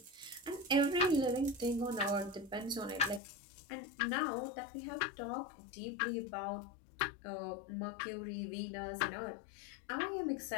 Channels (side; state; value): right; drops out; at 3.2 s